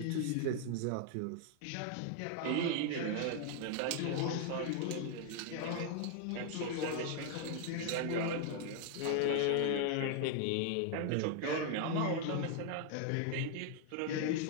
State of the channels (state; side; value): different; both; correlation 0.00